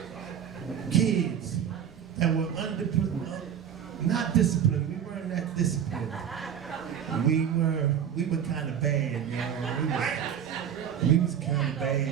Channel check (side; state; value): left; quieter; 8.8 dB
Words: kids that were not disciplined. We weren't that disciplined. We were kind of bad, you know. We was kind of